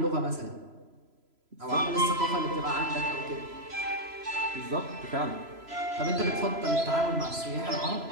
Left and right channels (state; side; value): late; left; 3.0 ms